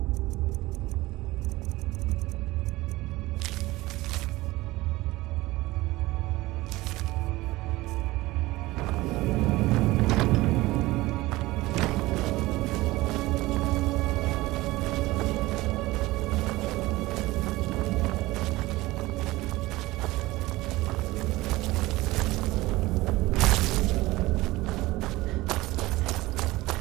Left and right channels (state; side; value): quieter; left; 19.3 dB